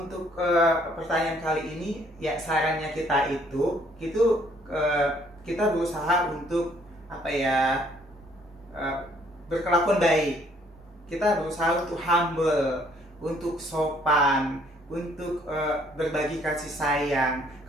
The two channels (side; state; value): both; normal; correlation 0.63